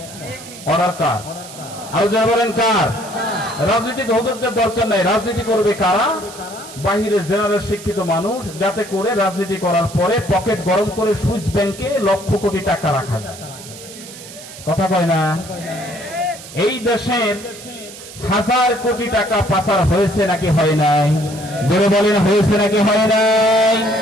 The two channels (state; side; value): noise; right; hiss, 15 dB below the sound